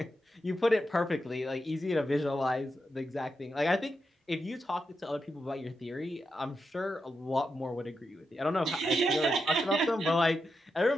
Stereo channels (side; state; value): both; normal; correlation 0.87